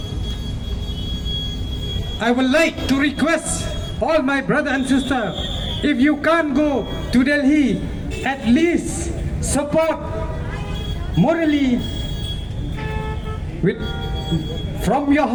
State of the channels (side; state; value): both; identical; correlation 1.00